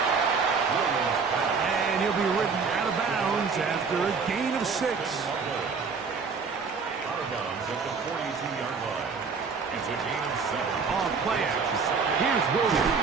And he'll be ridden out of bounds after a gain of 6. Out of bounds at the 42-yard line. It's a gain of 7. Off play action. Here's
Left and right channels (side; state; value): left; quieter; 5.2 dB